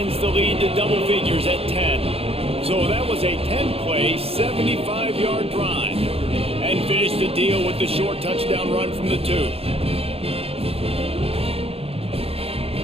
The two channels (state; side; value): late; left; 0.28 ms